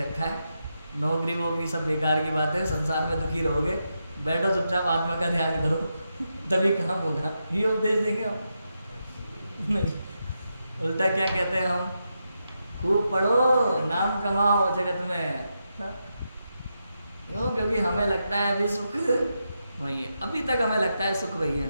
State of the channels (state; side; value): inverted; both; correlation -0.85